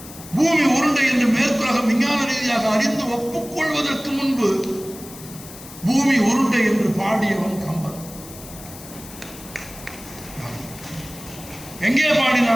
பூமி உருண்டை என்று மேற்குலகம் விஞ்ஞான ரீதியாக அறிந்து ஒப்புக்கொள்வதற்கு முன்பு பூமி உருண்டை என்று பாடியவன் கம்பன். எங்கே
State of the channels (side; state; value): left; noise; hiss, 16 dB below the sound